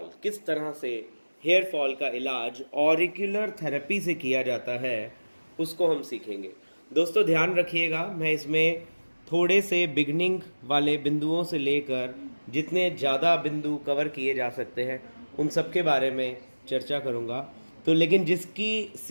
किस तरह से हेयर फॉल का इलाज ऑरिकुलर थेरेपी से किया जाता है उसको हम सीखेंगे। दोस्तों ध्यान रखिएगा, मैं इसमें थोड़े से बिगनिंग वाले बिंदुओं से लेकर जितने ज़्यादा बिंदु कवर किए जा सकते हैं उन सब के बारे में चर्चा करूँगा। तो लेकिन जिसकी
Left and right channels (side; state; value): both; inverted; correlation -1.00